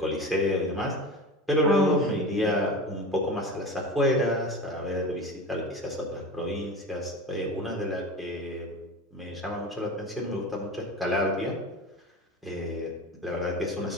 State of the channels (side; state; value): both; normal; correlation 0.29